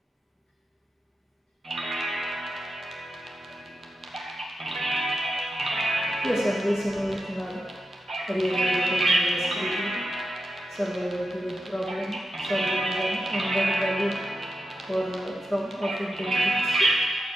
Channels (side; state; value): both; normal; correlation 0.89